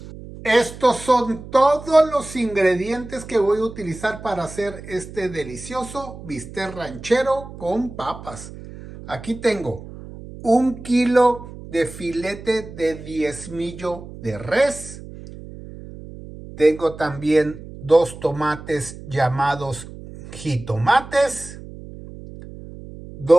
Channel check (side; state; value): right; noise; hum, 14 dB below the sound